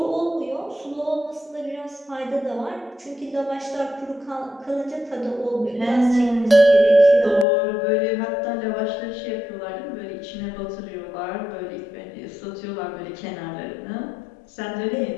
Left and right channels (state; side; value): drops out; right; at 7.5 s